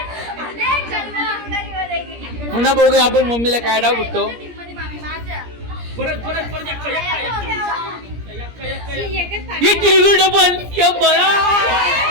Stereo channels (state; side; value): late; left; 17 ms